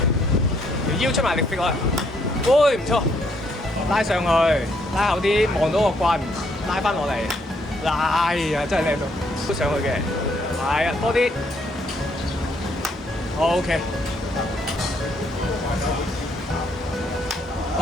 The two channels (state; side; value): normal; both; correlation 0.70